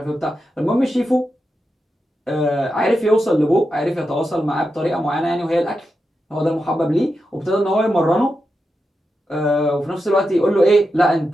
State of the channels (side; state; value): both; normal; correlation 0.88